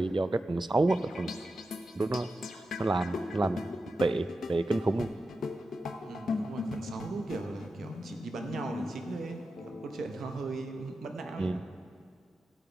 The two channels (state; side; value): normal; both; correlation 0.90